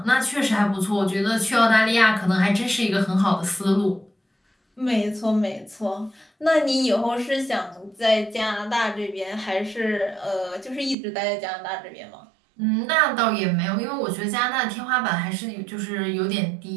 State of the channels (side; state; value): left; drops out; at 11.0 s